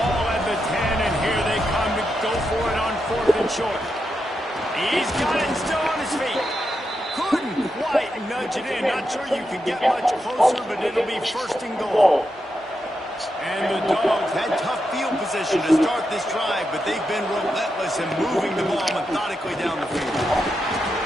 at the 10, and here they come to go for it on 4th and short. He's got it still on his feet. Couldn't quite nudge it in. Not sure you can get much closer, but it'll be 1st and goal. And the Dogs had tough field position to start this drive, but they've been relentless in moving the ball methodically down the field.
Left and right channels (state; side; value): normal; both; correlation 0.86